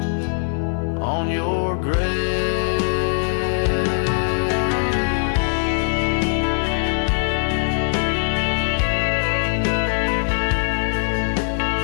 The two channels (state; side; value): silent; right; 65 dB below the other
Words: on your grave.